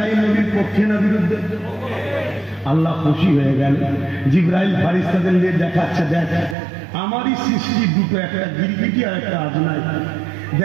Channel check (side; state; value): left; drops out; at 6.6 s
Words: নবীর পক্ষে না বিরুদ্ধে আল্লাহ খুশি হয়ে গেল জিব্রাইল ফারিস্তাদের নিয়ে দেখাচ্ছে দেখ আমারই সৃষ্টি দুটো একটা গিরগিটি আর একটা আজনাই